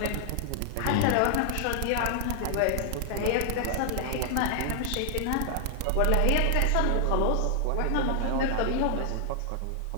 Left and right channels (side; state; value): both; different; correlation 0.00